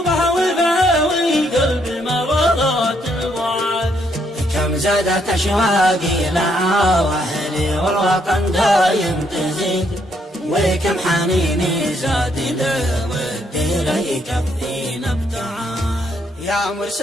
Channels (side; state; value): both; normal; correlation 0.73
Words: وفاوي قلبي مرضات البعاد. كم زادت أشواقي لها وأهلي والوطن دايم تزيد وكم حنيني زاد له ودي لا يكفينا ابتعاد. يا